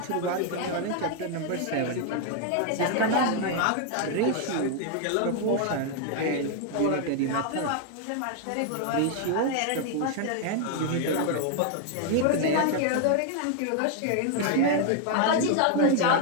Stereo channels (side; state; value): both; different; correlation 0.00